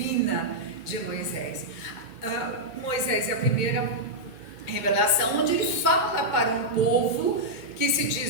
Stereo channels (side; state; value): right; late; 2.1 ms